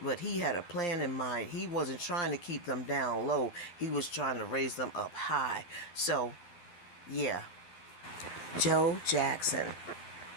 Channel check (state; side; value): late; right; 11 ms